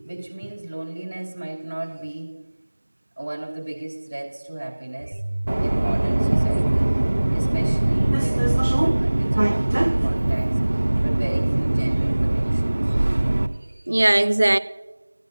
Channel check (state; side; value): inverted; both; correlation -1.00